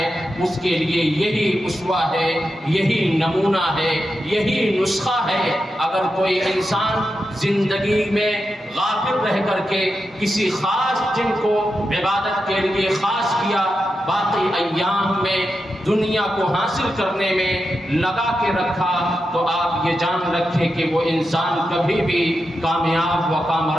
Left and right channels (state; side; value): normal; both; correlation 0.88